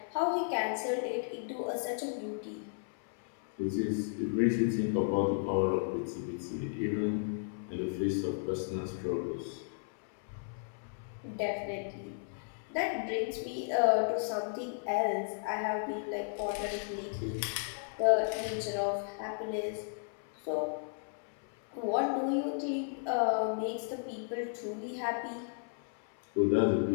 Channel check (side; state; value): right; silent; 55 dB below the other